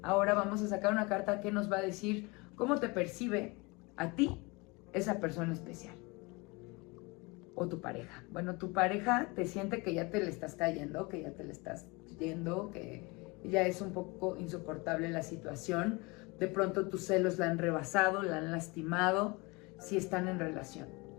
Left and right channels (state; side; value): quieter; right; 26.3 dB